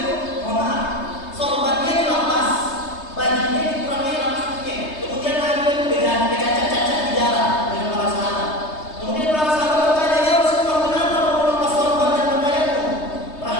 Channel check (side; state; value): right; late; 3.2 ms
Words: mohon maaf, sorbannya dilepas, bajunya dikurangi lapasnya. Kemudian Nabi itu bercacat-cacat di jalan dengan para sahabat. Kemudian para sahabat bertanya, ya Rasulullah, kenapa kamu lepas sorban dan pakaianmu?